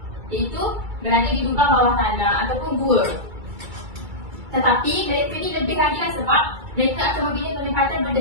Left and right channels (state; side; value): late; left; 2.3 ms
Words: Iaitu berada di lubang bawah tanah ataupun gua. Tetapi mereka ni lebih lagi lah sebab mereka akan membina penempatan